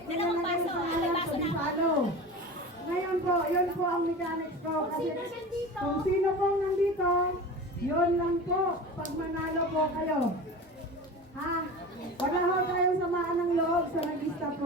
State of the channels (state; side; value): normal; both; correlation 0.33